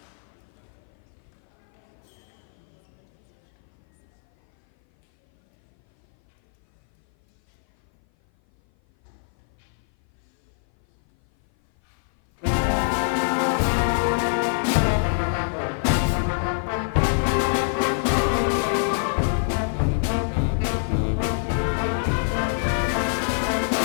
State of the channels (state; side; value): silent; right; 57 dB below the other